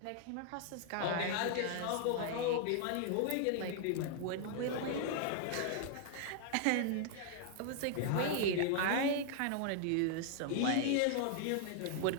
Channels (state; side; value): different; both; correlation 0.00